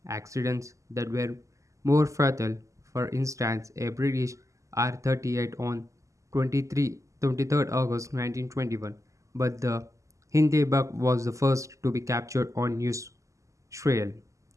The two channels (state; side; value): late; left; 0.16 ms